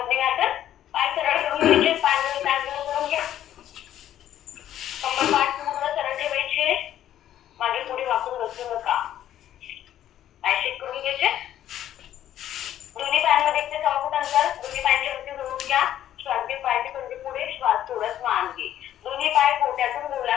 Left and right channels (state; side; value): quieter; right; 11.7 dB